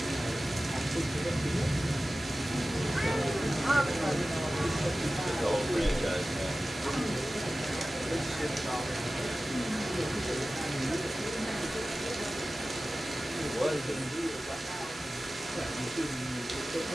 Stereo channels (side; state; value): both; normal; correlation 0.96